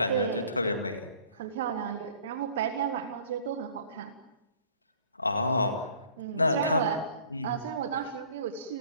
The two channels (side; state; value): both; inverted; correlation -0.52